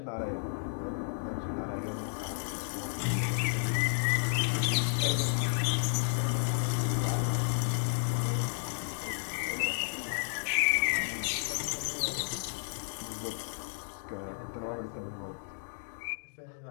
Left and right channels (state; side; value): silent; right; digital silence